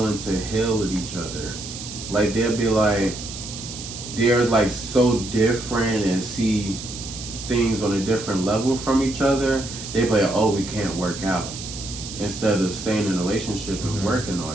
to heal with each other. Like they'll be like they're like so different and see things on a different level from each other. They be like, oh, we can't work out, instead of staying in a relationship and working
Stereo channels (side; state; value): right; noise; hiss, 10 dB below the sound